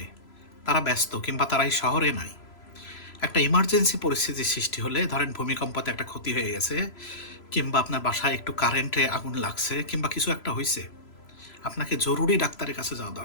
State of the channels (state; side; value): late; right; 3.0 ms